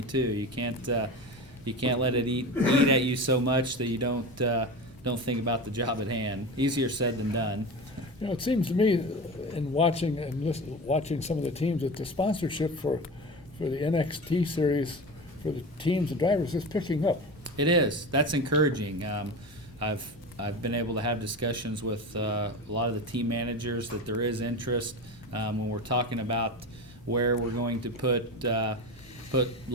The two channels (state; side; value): normal; both; correlation 0.27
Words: too. You can't let it eat at you so much that you don't think about the job at hand. Easier said than done. It seems to me, in watching some of the teams, that the sponsorship for the NXT series for the teams and drivers is picking up. It is. That's encouraging. I've been able to have discussions with a lot of the team managers that there is interest. When we're talking about where we're going to put